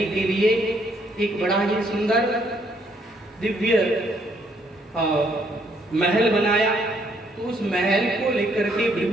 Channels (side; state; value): both; normal; correlation 0.69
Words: के लिए एक बड़ा ही सुंदर दिव्य महल बनाया। तो उस महल को लेकर के